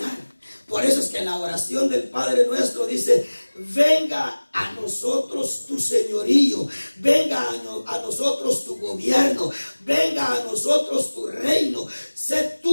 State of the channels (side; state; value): both; inverted; correlation -1.00